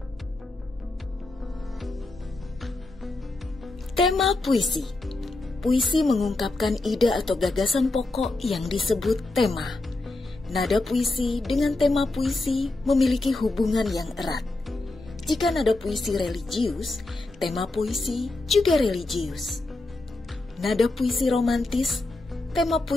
Tema puisi. Puisi mengungkapkan ide atau gagasan pokok yang disebut tema. Nada puisi dengan tema puisi memiliki hubungan yang erat. Jika nada puisi religius, tema puisi juga religius. Nada puisi romantis, tema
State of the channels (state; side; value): quieter; right; 3.0 dB